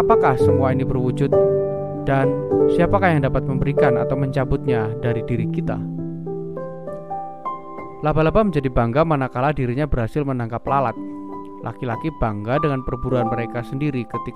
semua ini berwujud, dan siapakah yang dapat memberikan atau mencabutnya dari diri kita. Laba-laba menjadi bangga manakala dirinya berhasil menangkap lalat. Laki-laki bangga dengan perburuan mereka sendiri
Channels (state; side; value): identical; both; correlation 1.00